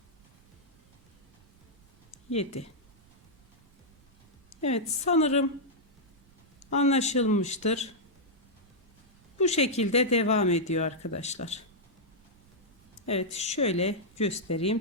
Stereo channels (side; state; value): right; noise; rumble, 29 dB below the sound